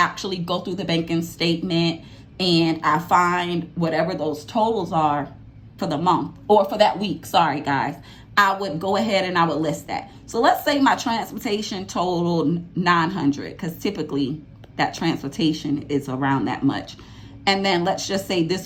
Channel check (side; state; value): both; identical; correlation 1.00